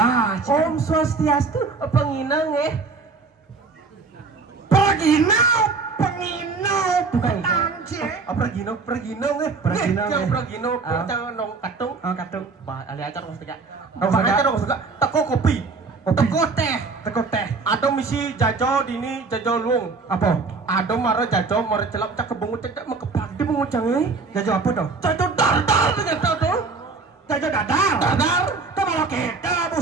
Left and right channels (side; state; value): left; quieter; 4.2 dB